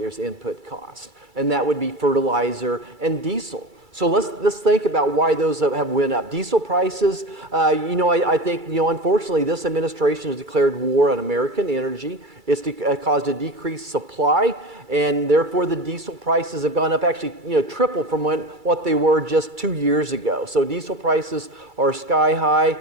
input cost, and that would be fertilizer and diesel. So let's think about why those have went up. Diesel prices, I think, unfortunately, this administration has declared war on American energy. It's caused a decreased supply, and therefore the diesel prices have gone up actually, triple from what they were just 2 years ago. So diesel prices are sky high.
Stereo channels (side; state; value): left; late; 2.3 ms